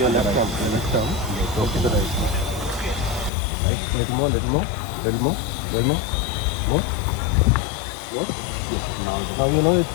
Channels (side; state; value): right; drops out; at 3.3 s